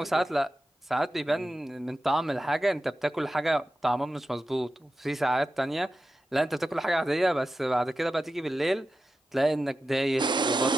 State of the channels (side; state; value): both; normal; correlation 0.92